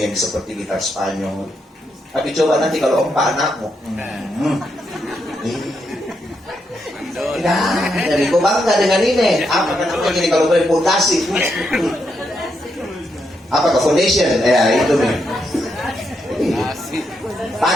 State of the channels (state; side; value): normal; both; correlation 0.81